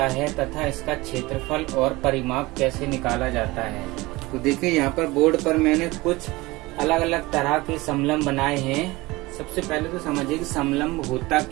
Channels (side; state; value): left; quieter; 21.3 dB